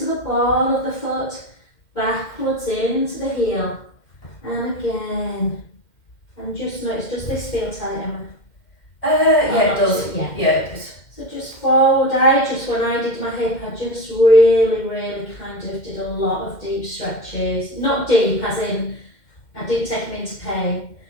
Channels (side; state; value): right; late; 2.1 ms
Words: the ball of the foot, backwards into the heel. And again. And just notice, does this feel tight, Emma? Yeah, it does. Yeah. Yeah, it does. So just forward, when I did my hip, I just really kind of did a lot of deep stretches. Not deep, as in, I did take them into pain,